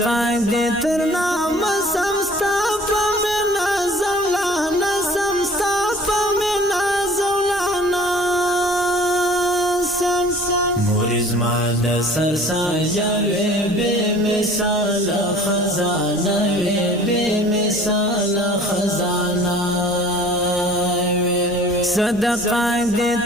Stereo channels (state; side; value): normal; both; correlation 0.49